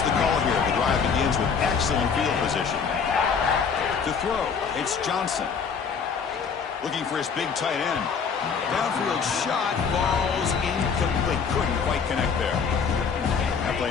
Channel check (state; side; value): quieter; right; 6.1 dB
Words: the call here? The drive begins with excellent field position. To throw, it's Johnson. Looking for his big tight end. Downfield shot, falls incomplete. Couldn't quite connect there. That